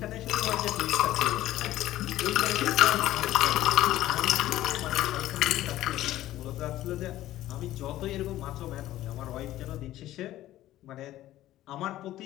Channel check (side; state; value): right; quieter; 14.5 dB